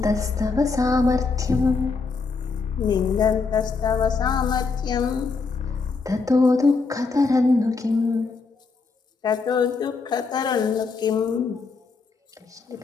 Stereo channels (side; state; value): right; quieter; 4.4 dB